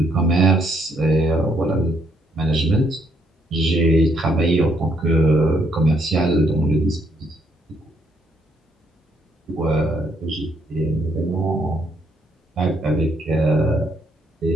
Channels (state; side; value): normal; both; correlation 0.71